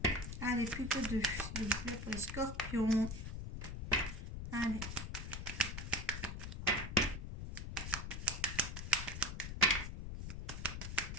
Allez, plus que 2, s'il vous plaît, pour les scorpions. Allez.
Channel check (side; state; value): left; noise; rumble, 6 dB below the sound